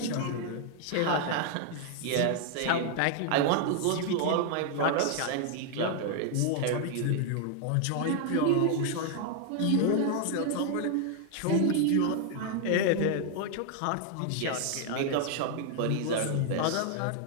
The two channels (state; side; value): different; both; correlation 0.00